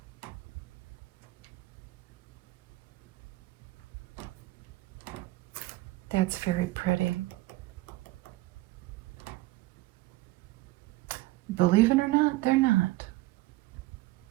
That's very pretty. Believe it or not, they're not.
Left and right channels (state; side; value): quieter; left; 18.8 dB